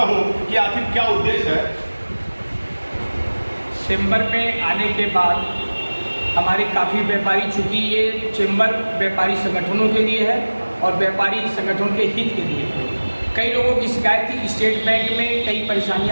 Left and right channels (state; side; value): inverted; both; correlation -1.00